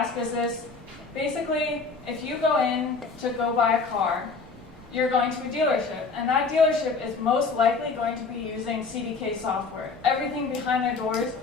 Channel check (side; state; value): right; quieter; 4.4 dB